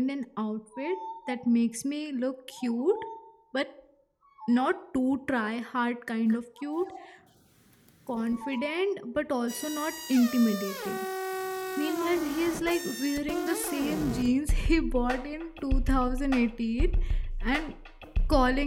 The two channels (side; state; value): both; identical; correlation 1.00